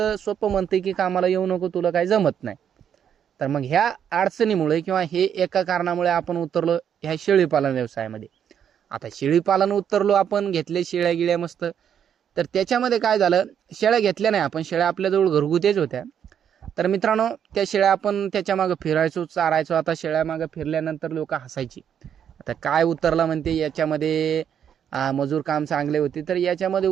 सोपं म्हणतंय की कामाला येऊ नको, तुला काही जमत नाही. तर मग ह्या अडचणीमुळे किंवा हे एका कारणामुळे आपण उतरलो ह्या शेळीपालन व्यवसायामध्ये. आता शेळीपालन उतरलो आपण, घेतले शेळ्या गिळ्या मस्त. तर त्याच्यामध्ये काय झालं, शेळ्या घेतल्या नाही आपण, शेळ्या आपल्याजवळ घरगुतीच होत्या. तर मित्रांनो, त्या शेळ्या आपण त्याच्यामागं फिरायचो, चारायचो. आता शेळ्यामागं फिरल्यानंतर लोक हसायची, आता काय उतरला म्हणते याच्यामध्ये, मजूर काम चांगले होते. तर याच्यामध्ये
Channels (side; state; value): left; quieter; 8.7 dB